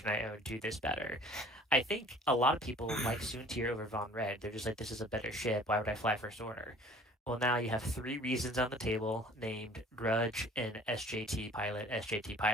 I own do this better? I think a lot of people like Soontir over Von Red. They're just like, this is a better ship. Why would I fly First Order? Well, now you have 3 reasons on the table named Grudge and SJT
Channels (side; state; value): both; normal; correlation 0.49